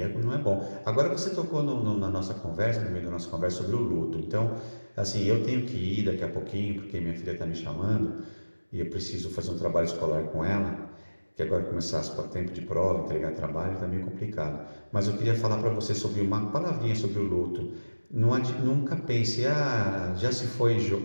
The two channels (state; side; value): inverted; both; correlation -1.00